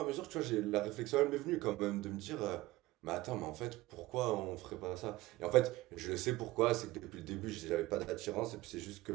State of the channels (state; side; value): quieter; left; 18.6 dB